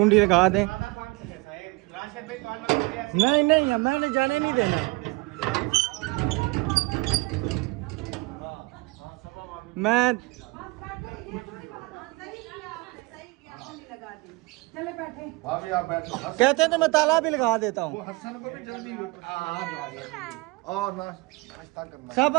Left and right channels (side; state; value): left; quieter; 24.7 dB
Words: लगा दें। नहीं नहीं, मैंने जाने नहीं देना। मैं चले बैठे। भाभी आप बैठो। कहते हैं तो मैं ताला भी लगा देता वो हूँ। हसन को भी जल्दी और नाश्ता करना। सब